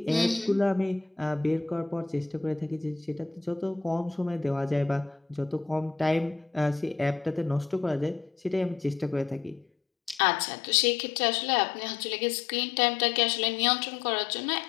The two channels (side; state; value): right; drops out; at 10.2 s